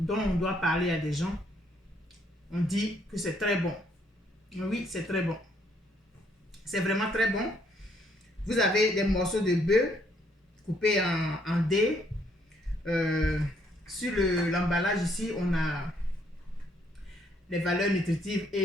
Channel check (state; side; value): normal; both; correlation 0.69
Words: on doit parler à des gens, on dit que c'est très bon. Oui, c'est très bon. C'est vraiment très bon. Vous avez des morceaux de bœuf coupés en dés. Sur l'emballage ici, on a les valeurs nutritives